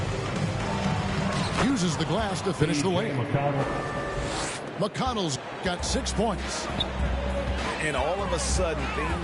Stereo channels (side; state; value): both; identical; correlation 1.00